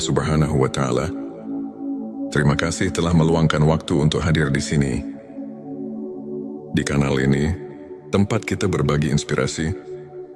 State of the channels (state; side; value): identical; both; correlation 1.00